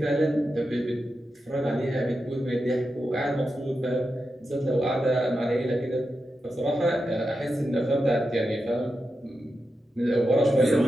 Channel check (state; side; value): normal; both; correlation 0.89